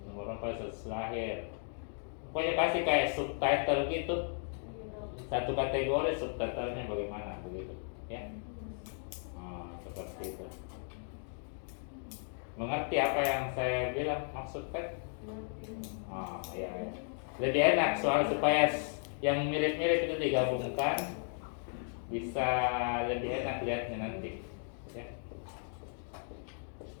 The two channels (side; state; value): right; silent; 54 dB below the other